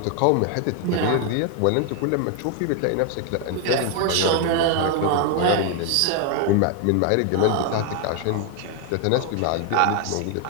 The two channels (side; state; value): both; different; correlation 0.00